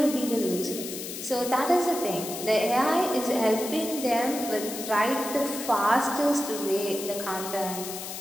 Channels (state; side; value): noise; left; hiss, 8 dB below the sound